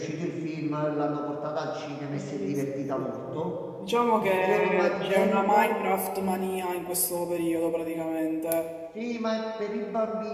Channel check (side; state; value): both; identical; correlation 1.00